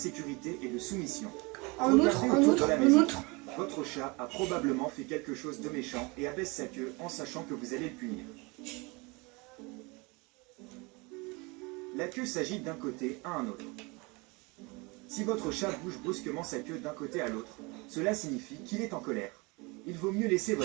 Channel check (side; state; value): left; quieter; 27.2 dB